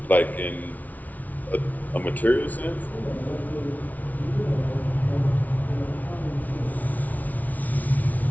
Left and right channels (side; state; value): right; late; 0.075 ms